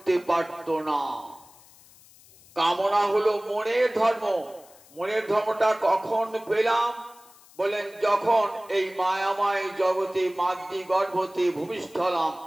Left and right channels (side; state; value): left; noise; hiss, 25 dB below the sound